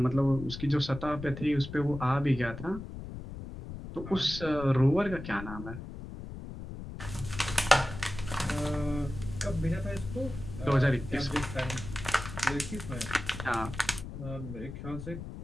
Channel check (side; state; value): left; noise; rumble, 10 dB below the sound